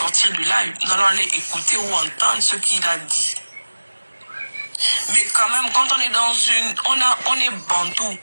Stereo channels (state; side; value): inverted; both; correlation -1.00